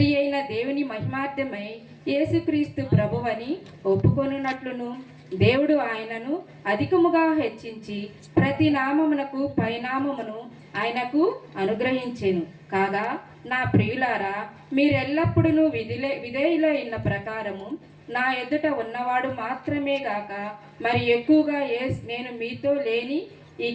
అయిన దేవుని మహిమార్థమై యేసుక్రీస్తు ప్రభువని ఒప్పుకొనున్నట్లును దేవుడు ఆయనను అధికముగా హెచ్చించి ప్రతి నామమునకు పైనామమును ఆయనకు అనుగ్రహించెను. కాగా నా ప్రియులారా, మీరెల్లప్పుడూ విధేయులైన ప్రకారము నా ఎదుట ఉన్నవాడు మాత్రమే గాక మరి ఎక్కువగా నేను మీతో లేని ఈ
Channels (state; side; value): identical; both; correlation 1.00